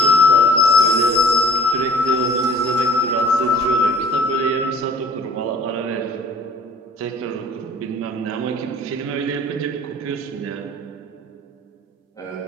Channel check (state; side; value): normal; both; correlation 0.49